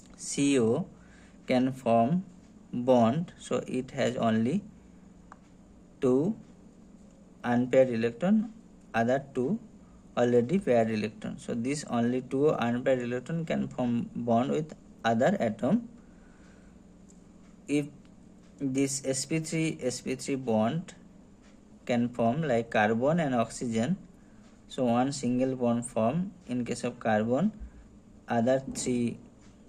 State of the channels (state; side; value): identical; both; correlation 1.00